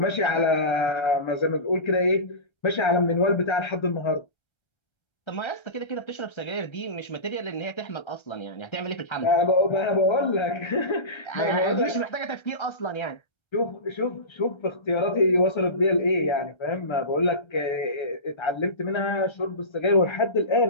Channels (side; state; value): right; late; 1.3 ms